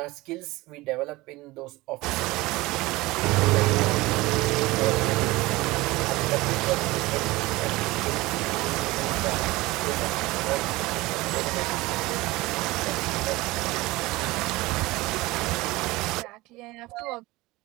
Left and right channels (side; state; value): left; quieter; 20.6 dB